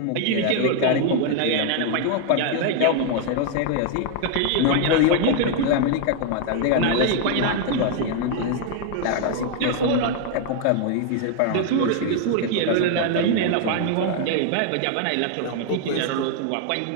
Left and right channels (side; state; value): both; different; correlation 0.00